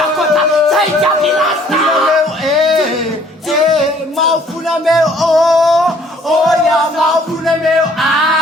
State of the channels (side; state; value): both; normal; correlation 0.59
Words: zaidi lasta. Maufuna meu ya maufuna meu